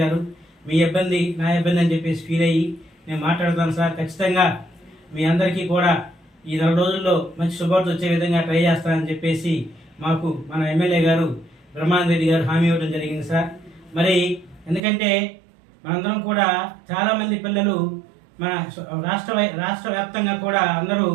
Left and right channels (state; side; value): drops out; left; at 14.8 s